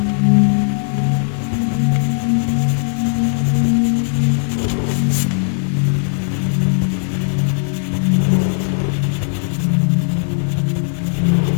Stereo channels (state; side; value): silent; right; digital silence